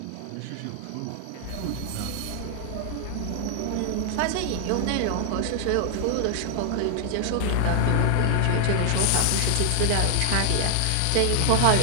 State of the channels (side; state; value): both; different; correlation 0.00